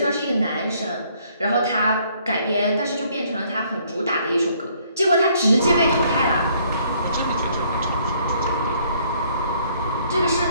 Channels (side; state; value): both; inverted; correlation -0.64